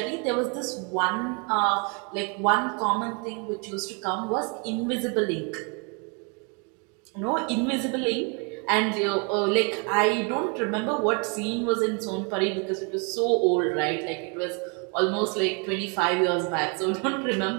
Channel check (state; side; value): quieter; left; 35.6 dB